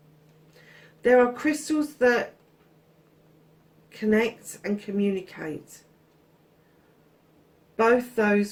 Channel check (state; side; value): identical; both; correlation 1.00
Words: There are crystals that connect and communicate, both